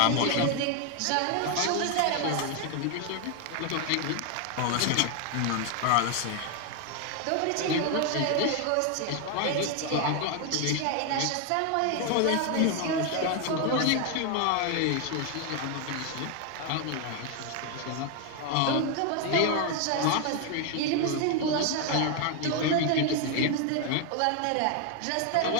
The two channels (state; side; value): different; both; correlation 0.01